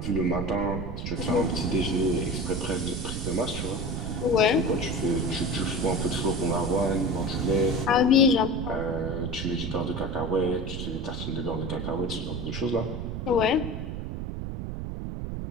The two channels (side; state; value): right; noise; rumble, 5 dB below the sound